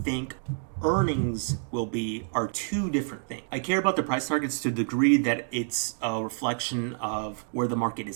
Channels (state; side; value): silent; left; digital silence